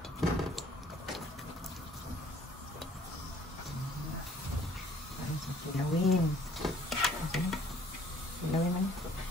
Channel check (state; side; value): normal; both; correlation 0.57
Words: Kilawin. Okay. Kilawin man.